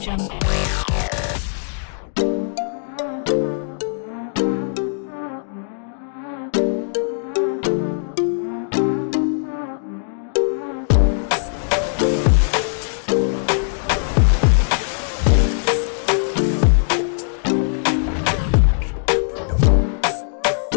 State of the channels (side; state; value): right; silent; digital silence